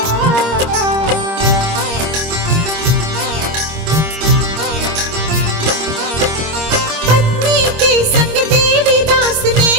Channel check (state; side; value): late; left; 26 ms